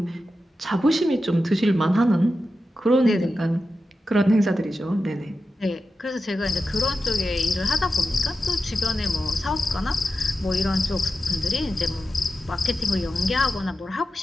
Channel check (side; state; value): both; normal; correlation 0.91